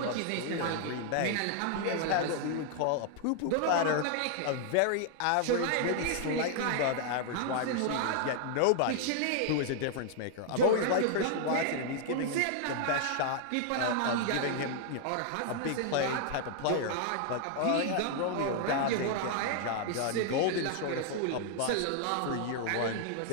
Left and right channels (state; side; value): different; both; correlation 0.00